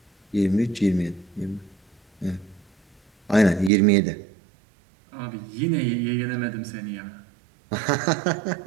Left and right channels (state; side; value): drops out; left; at 3.7 s